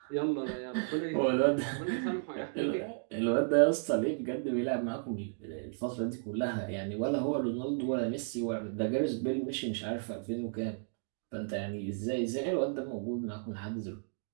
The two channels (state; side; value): silent; left; digital silence